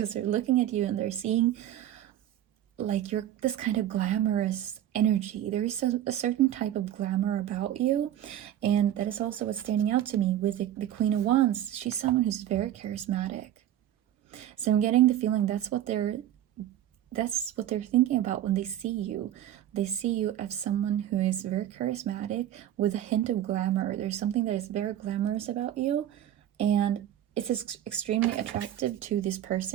they're looking at you and they're seeing like you're this kind of glamorous energy. There is a certain type of glamour about you, and that is also what's standing out to me with the Queen of Wands. She's someone who's very charismatic. So I'm getting the feeling that's what they're that's what they're thinking about when they see you. They see you as someone who is very charismatic with a hint of glamour. There's something that is very glamorous about you, and it's extremely attractive to this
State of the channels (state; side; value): quieter; left; 11.9 dB